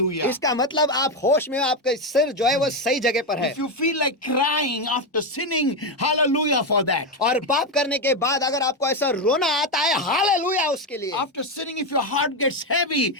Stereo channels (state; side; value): normal; both; correlation 0.09